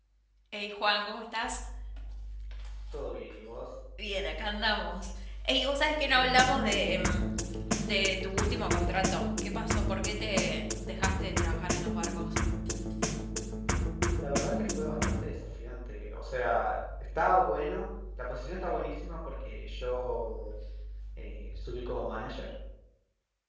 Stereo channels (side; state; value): both; identical; correlation 1.00